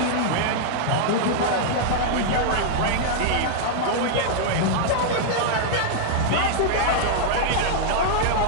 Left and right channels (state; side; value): different; both; correlation -0.01